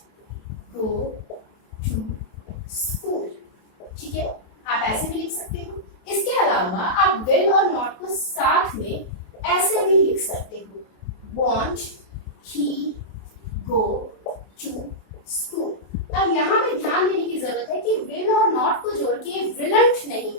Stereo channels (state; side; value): late; right; 27 ms